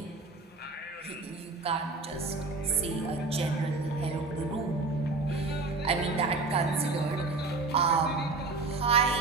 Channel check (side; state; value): left; quieter; 3.6 dB